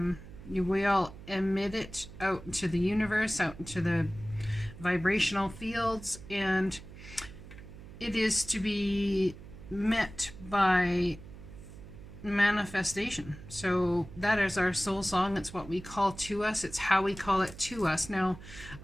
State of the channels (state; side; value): noise; right; hum, 16 dB below the sound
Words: We all emit it out into the universe, out into the vibrational fields, and it is to be met by manifestation. So that is our soul song. It's what we call to us. It's how we call it to us. Now